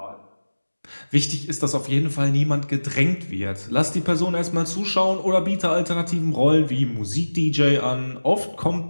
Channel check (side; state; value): both; inverted; correlation -1.00